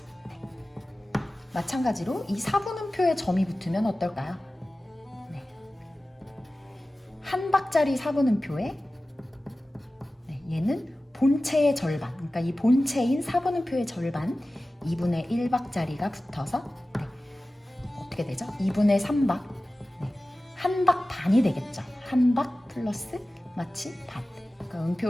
마찬가지로 이 4분음표에 점이 붙으면 어떨까요? 한 박자리 4분음표에 얘는 본체의 절반, 그러니까 이 본체인 4분음표의 절반 2분의 1박자리가 붙어서 어떻게 되죠? 2분의 3박, 한 박 반이 되겠죠. 한 박 플러스 마치 반. 그러니까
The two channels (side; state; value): both; normal; correlation 0.96